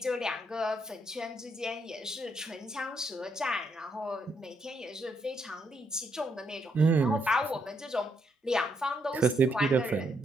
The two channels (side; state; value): both; normal; correlation 0.76